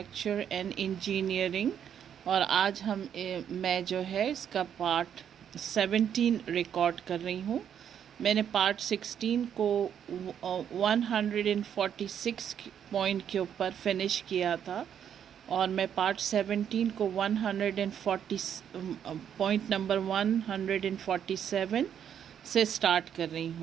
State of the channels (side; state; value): left; quieter; 8.8 dB